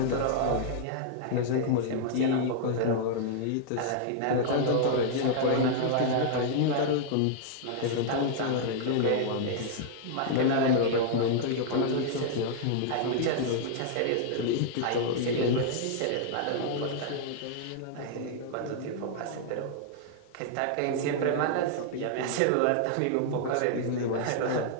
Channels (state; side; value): different; both; correlation -0.01